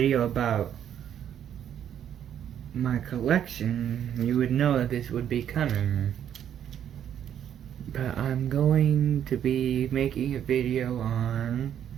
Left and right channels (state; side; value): quieter; left; 9.7 dB